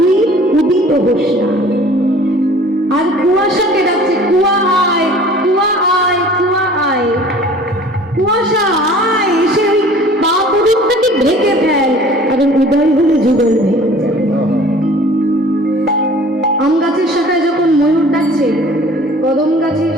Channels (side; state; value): both; normal; correlation 0.48